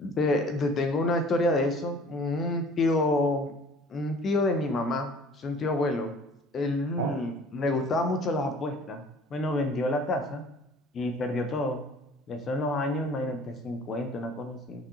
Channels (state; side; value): normal; both; correlation 0.50